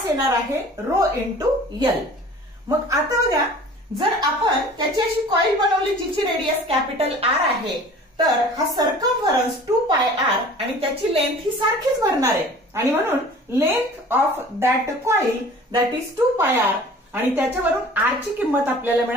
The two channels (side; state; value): both; normal; correlation 0.45